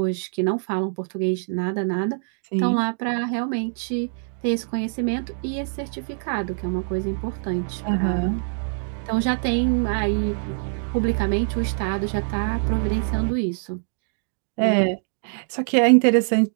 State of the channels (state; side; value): silent; left; digital silence